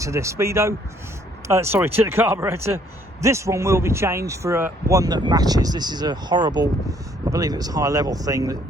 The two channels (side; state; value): both; normal; correlation 0.64